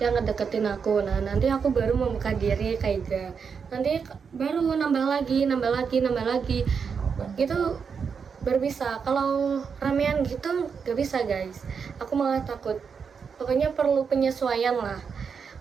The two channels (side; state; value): left; quieter; 6.2 dB